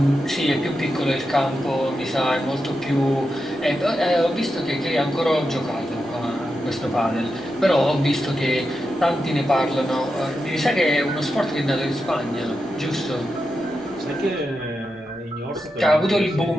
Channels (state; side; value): noise; left; rumble, 28 dB below the sound